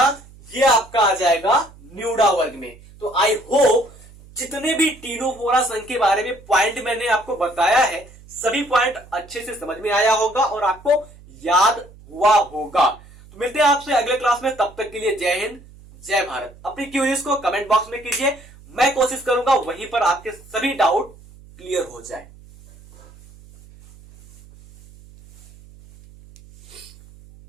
ये आपका आ जाएगा न्यूडा वर्ग में। तो आई होप जितने भी टीनोफोरा संघ के बारे में पॉइंट मैंने आपको बताया है, सभी पॉइंट अच्छे से समझ में आया होगा और आपको याद हुआ होगा। तो मिलते हैं आपसे अगले क्लास में, तब तक के लिए जय हिंद, जय भारत। अपनी क्वेरीज को कमेंट बॉक्स में कीजिए, मैं कोशिश करूंगा वहीं पर आपके सभी डाउट क्लियर हो जाए।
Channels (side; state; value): right; noise; hum, 22 dB below the sound